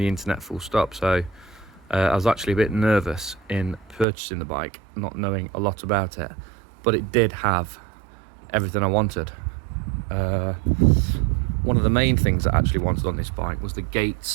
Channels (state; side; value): drops out; left; at 4.0 s